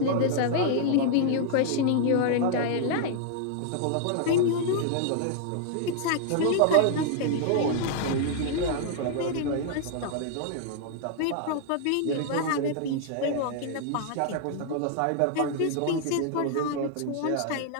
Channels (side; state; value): both; different; correlation -0.01